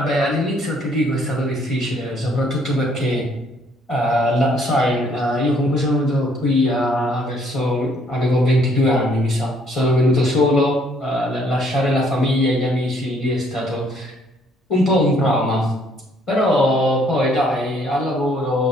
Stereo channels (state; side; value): normal; both; correlation 0.65